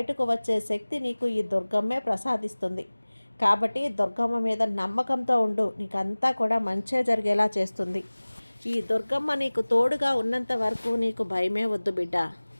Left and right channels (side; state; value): both; inverted; correlation -1.00